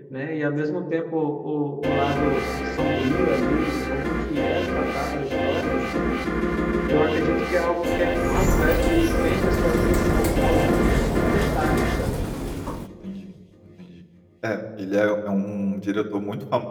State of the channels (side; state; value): both; identical; correlation 1.00